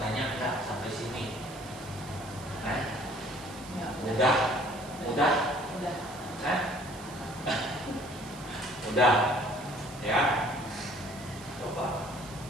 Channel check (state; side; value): noise; right; hiss, 17 dB below the sound